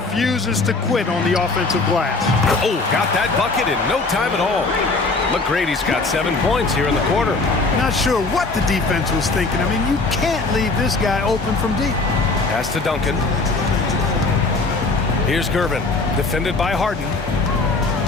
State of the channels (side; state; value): right; quieter; 3.6 dB